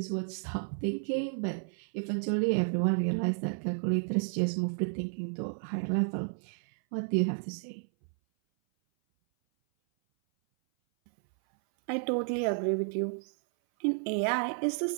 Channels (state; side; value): silent; left; 57 dB below the other